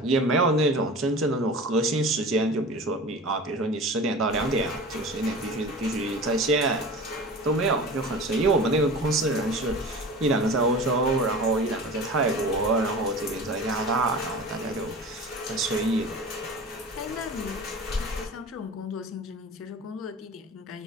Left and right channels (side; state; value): both; normal; correlation 0.36